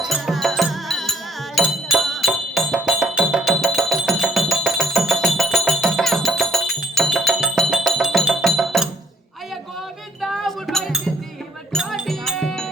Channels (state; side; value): normal; both; correlation 0.64